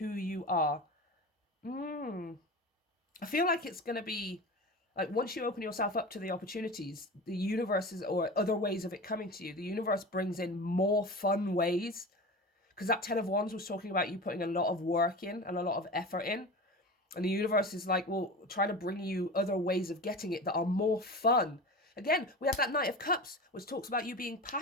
you are. I feel like it's going to be Like once you open yourself up to the opportunities, the universe is, or other ways of it coming to you, the universe brings in more fun ways. Because that 10 of Wands was talking about you putting a lot of work in and a lot of effort in. And the universe is like, well, trying to bring you other ways of getting it that are more fun. Again, we have that Knight of Cups, which talks about you being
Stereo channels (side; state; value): both; normal; correlation 0.30